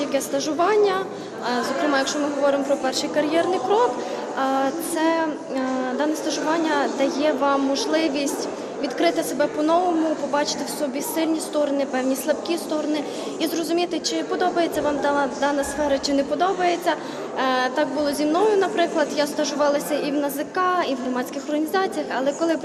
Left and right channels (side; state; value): both; identical; correlation 1.00